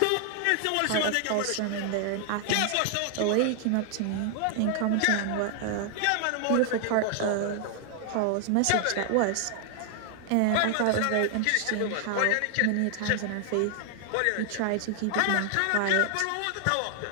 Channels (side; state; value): both; different; correlation 0.00